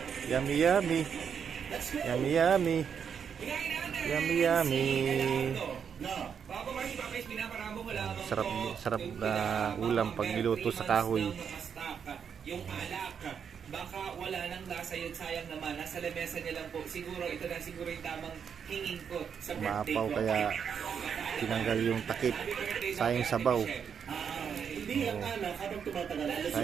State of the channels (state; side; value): quieter; left; 7.3 dB